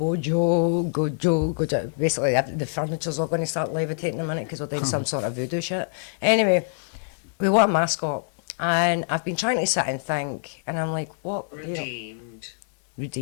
Gojo. Basically, the furniture's all going to start levitating in a minute because we're doing some sort of voodoo shit. Anyway, we want a mascot. And I've been trying to sit and think, and I'm like, what? You know, Redeemed.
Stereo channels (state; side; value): silent; right; 62 dB below the other